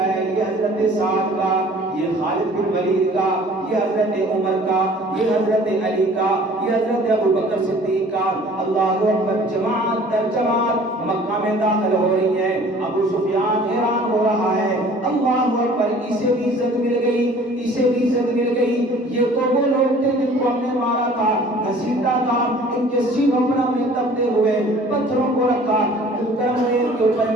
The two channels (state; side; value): normal; both; correlation 0.50